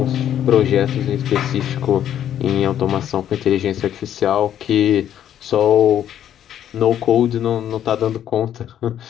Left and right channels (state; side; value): quieter; right; 10.5 dB